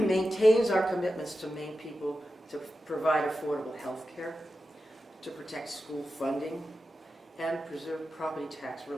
our commitments to Maine people to provide affordable health care, to protect school funding, and preserve property tax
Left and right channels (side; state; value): both; normal; correlation 0.91